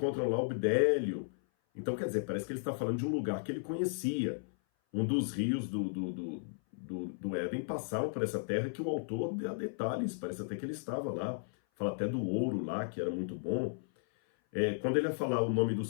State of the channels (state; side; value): silent; right; 55 dB below the other